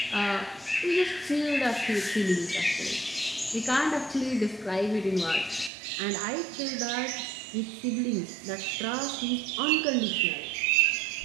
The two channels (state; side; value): drops out; left; at 5.7 s